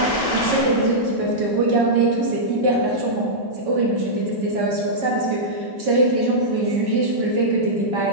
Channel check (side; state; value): both; normal; correlation -0.10